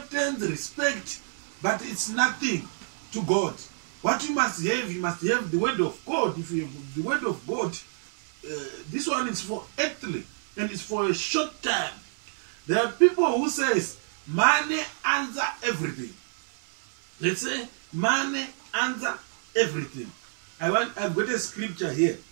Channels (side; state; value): left; silent; digital silence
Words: respect, but it's nothing to God. What you must have the word of God. If you have the word of God, this one is for earthly and it's for a short time. There are people who says money answer everything. Let's say money answer everything. I've got a scripture here.